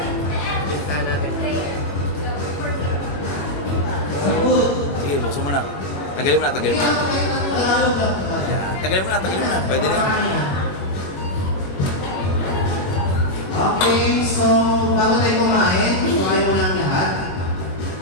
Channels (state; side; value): late; right; 21 ms